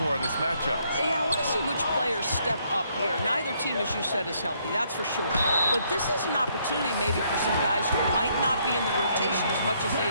in this matchup? Yeah, I want to see which players step up here. Neither team, as you said, is healthy, that's for sure. But this is an opportunity maybe for some guys who might not be in the rotation as much as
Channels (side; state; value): both; inverted; correlation -0.70